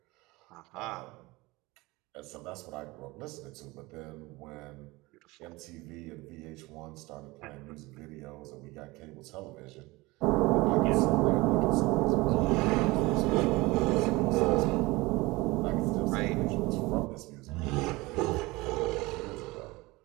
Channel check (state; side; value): quieter; left; 22.0 dB